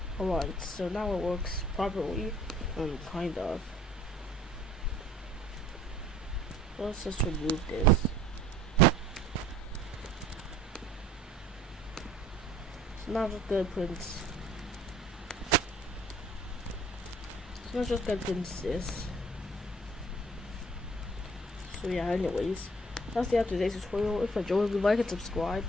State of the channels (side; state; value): both; normal; correlation 0.53